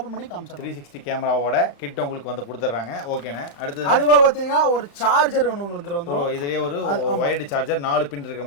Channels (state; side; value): late; right; 35 ms